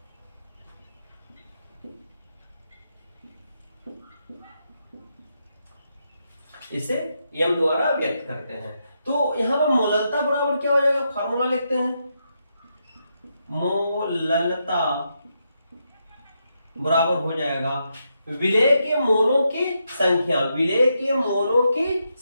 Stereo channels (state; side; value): inverted; both; correlation -0.82